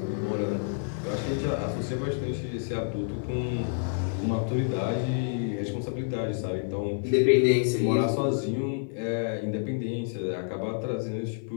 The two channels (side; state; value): right; silent; 59 dB below the other